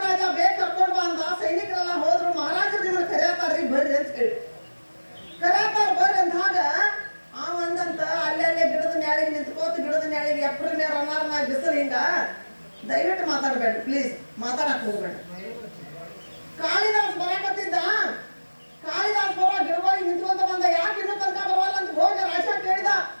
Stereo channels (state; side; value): inverted; both; correlation -1.00